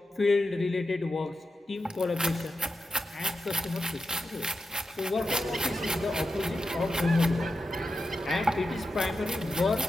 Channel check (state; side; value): normal; both; correlation 0.90